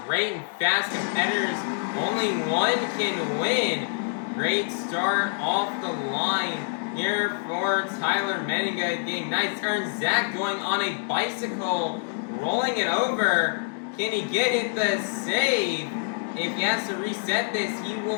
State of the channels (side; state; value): right; silent; digital silence